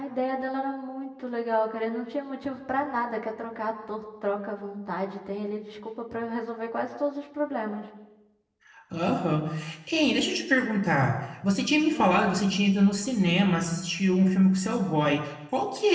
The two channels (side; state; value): both; identical; correlation 1.00